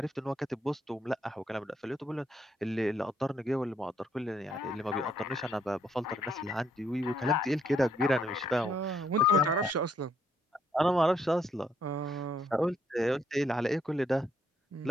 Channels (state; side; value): normal; both; correlation 0.71